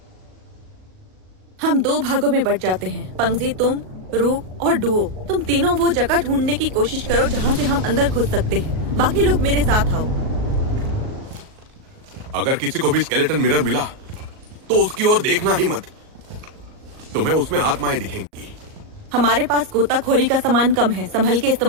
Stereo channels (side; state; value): left; late; 38 ms